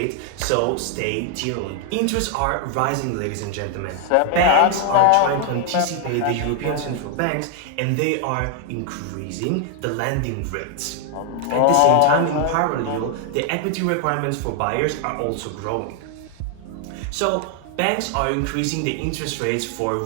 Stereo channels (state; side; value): different; both; correlation 0.00